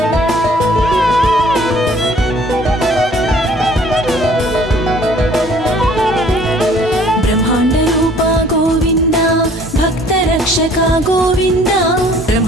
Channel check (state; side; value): normal; both; correlation 0.55